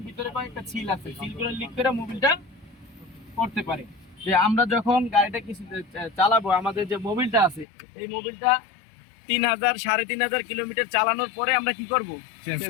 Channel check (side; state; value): right; drops out; at 7.7 s